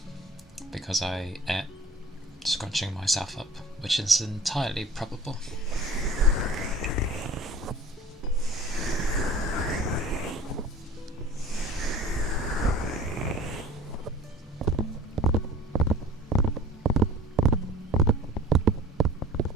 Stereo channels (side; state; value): both; normal; correlation 0.45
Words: because I ate scrunching myself up, which is entirely probable.